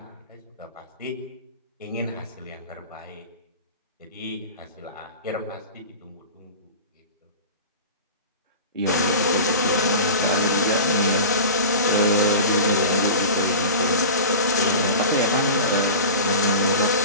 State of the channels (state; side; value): inverted; both; correlation -0.33